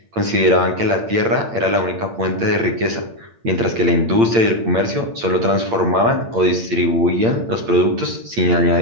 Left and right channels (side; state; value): left; late; 8.8 ms